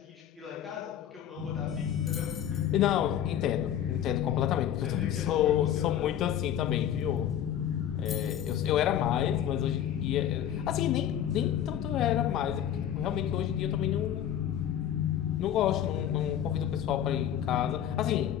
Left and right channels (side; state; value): right; quieter; 10.3 dB